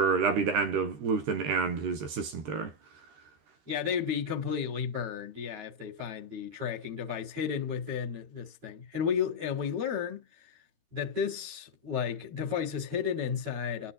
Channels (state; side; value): late; left; 13 ms